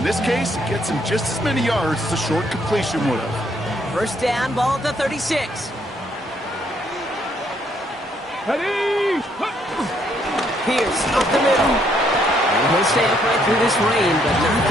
this case, it gets him just as many yards as a short completion would have. 1st down, ball at the 36. Pierce up the middle. And he'll stamp right through this rain, but not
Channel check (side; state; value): both; normal; correlation 0.70